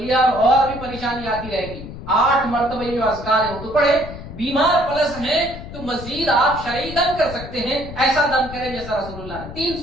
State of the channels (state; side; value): noise; left; rumble, 12 dB below the sound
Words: اور بھی پریشانی آتی رہے گی۔ 8 مرتبہ جو اذکار ہے وہ تو پڑھے۔ بیمار پلس ہیں تو مزید آپ شرعی دم کر سکتے ہیں، ایسا دم کریں جیسا رسول اللہ نے۔ 3